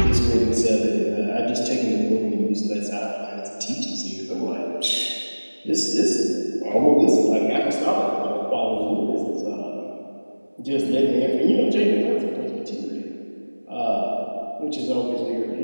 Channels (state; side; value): inverted; both; correlation -1.00